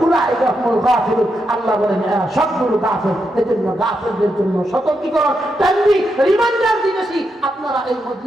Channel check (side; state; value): both; normal; correlation 0.83